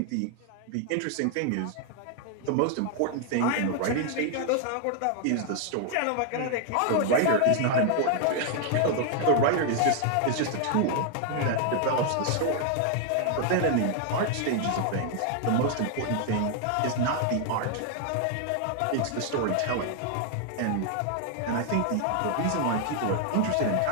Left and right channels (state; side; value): different; both; correlation 0.00